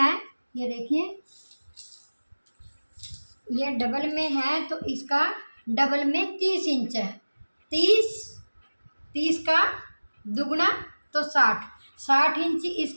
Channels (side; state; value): both; inverted; correlation -1.00